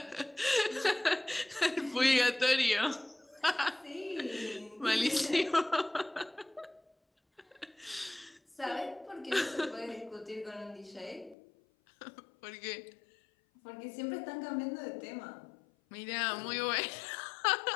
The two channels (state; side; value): drops out; right; at 11.4 s